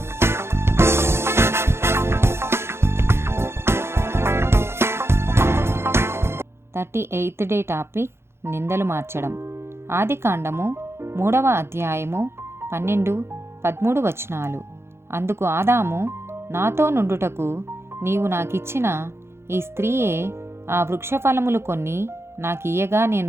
38th డే టాపిక్ నిందలు మార్చడం. ఆదికాండము 3వ అధ్యాయము 12-13 వచనాలు. అందుకు ఆదాము, నాతో నుండుటకు నీవు నాకిచ్చిన ఈ స్త్రీయే ఆ వృక్షఫలములు కొన్ని నాకియ్యగా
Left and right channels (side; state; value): left; late; 0.12 ms